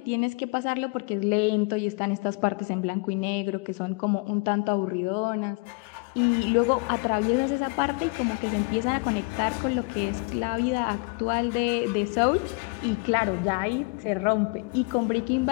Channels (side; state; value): right; quieter; 31.4 dB